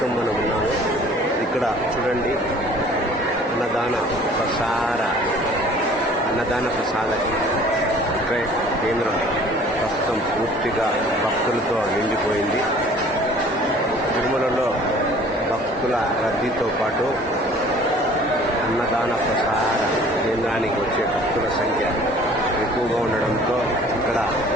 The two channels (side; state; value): both; normal; correlation 0.51